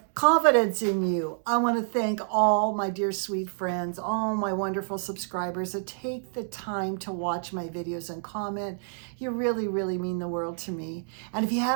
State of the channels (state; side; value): silent; left; digital silence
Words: confidence in you. I want to thank all my dear sweet friends, all my wonderful subscribers that take the time to watch my videos and comment. You really, really mean the world to me. And if you